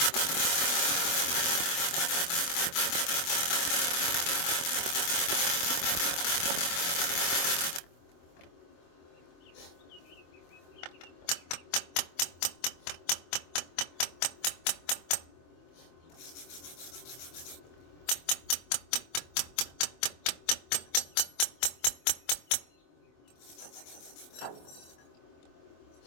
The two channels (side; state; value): right; late; 24 ms